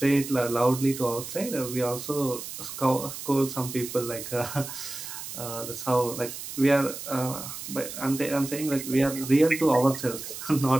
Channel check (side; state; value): right; noise; hiss, 9 dB below the sound